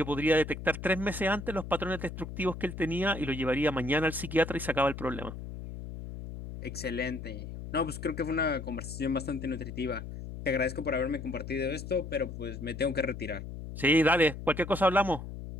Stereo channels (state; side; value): noise; left; hum, 9 dB below the sound